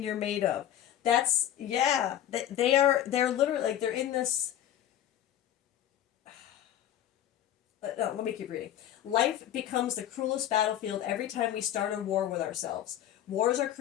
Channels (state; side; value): quieter; right; 11.5 dB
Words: you're made of? That's, yeah. They're literally, like, they're in this. No, let me keep reading. Life becomes the cruelest battlefield every time we start a war with ourselves. Wars are